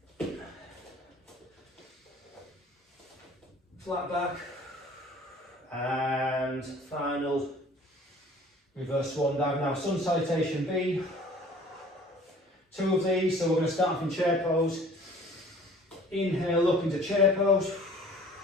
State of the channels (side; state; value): both; normal; correlation 0.50